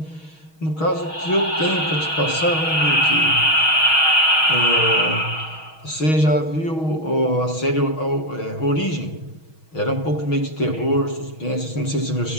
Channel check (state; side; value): late; right; 6.3 ms